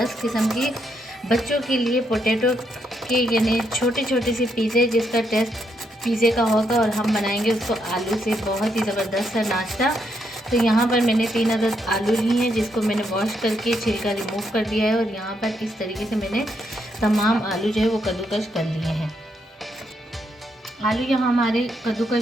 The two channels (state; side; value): normal; both; correlation 0.78